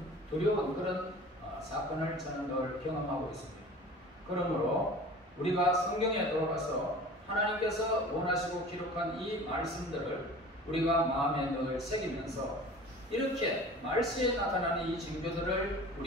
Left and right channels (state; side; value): normal; both; correlation 0.41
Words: 그런 사건을 저는 늘 경험하고 있습니다. 그러므로 우리가 성경에 돌아가서 하나님께서 원하시고 기록한 이 말씀들을 우리가 마음에 늘 새기면서 이렇게 말세에 나타나는 이 징조들을